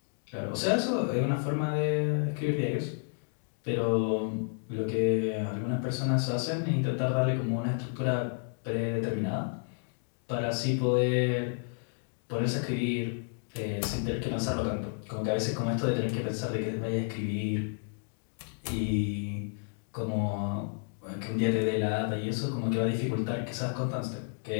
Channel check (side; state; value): right; silent; 57 dB below the other